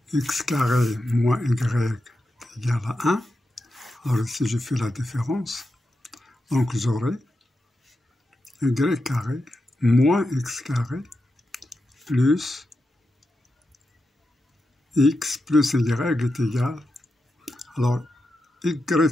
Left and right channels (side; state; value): both; normal; correlation 0.88